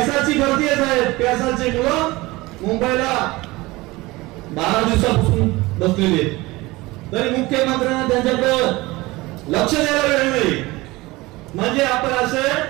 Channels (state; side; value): quieter; left; 20.9 dB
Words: भरती आहे साहेब. पेसाचे मुलं मुंबईला 12 दिवसापासून बसलेले आहेत, तरी मुख्यमंत्र्यांना त्यांच्याकडे लक्ष द्यायला वेळ नाही. म्हणजे आपण असे